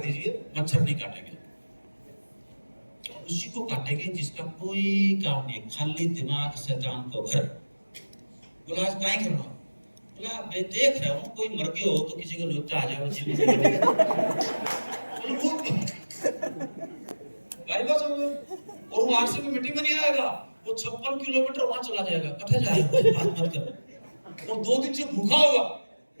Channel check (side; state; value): both; inverted; correlation -1.00